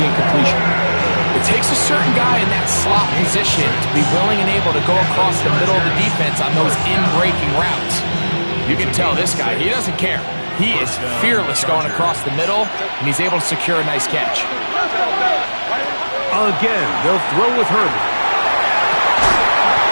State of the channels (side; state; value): both; inverted; correlation -1.00